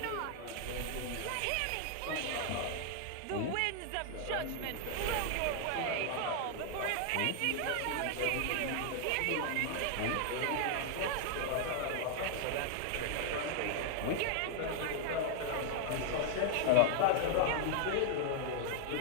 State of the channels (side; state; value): both; different; correlation 0.00